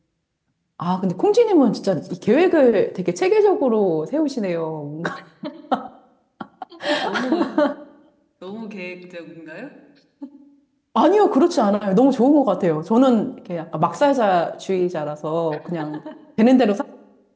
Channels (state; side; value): identical; both; correlation 1.00